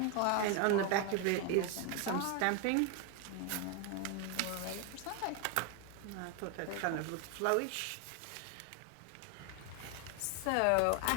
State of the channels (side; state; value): both; different; correlation 0.01